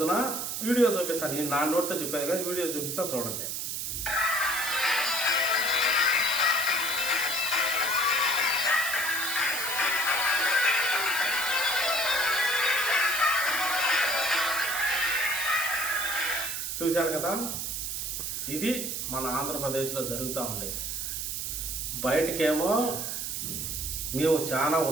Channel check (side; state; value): right; noise; hiss, 3 dB below the sound